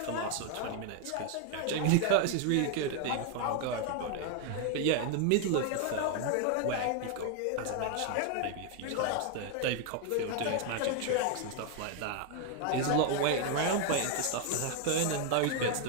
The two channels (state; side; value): different; both; correlation 0.00